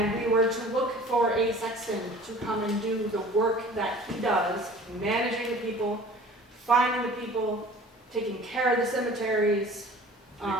we were to look for a sexton to come and do the work that he does, managing the people, finding the people, taking care of the cemeteries,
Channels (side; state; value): both; normal; correlation 0.46